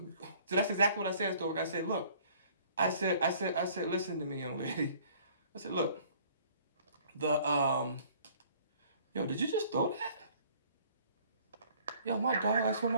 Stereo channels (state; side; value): inverted; both; correlation -0.56